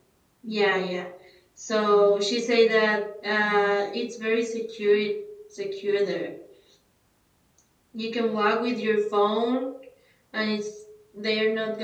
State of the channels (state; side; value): identical; both; correlation 1.00